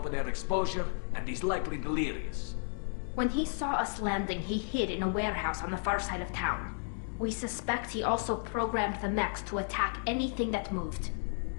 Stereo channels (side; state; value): right; silent; 56 dB below the other